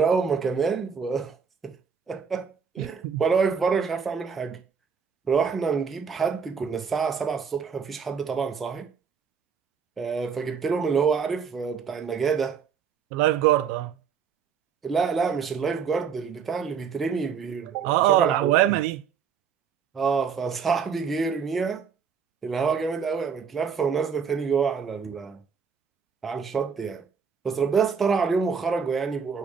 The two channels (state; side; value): quieter; left; 6.4 dB